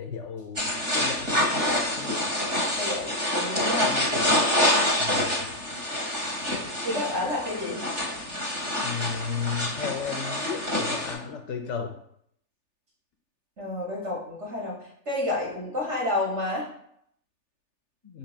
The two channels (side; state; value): left; late; 3.4 ms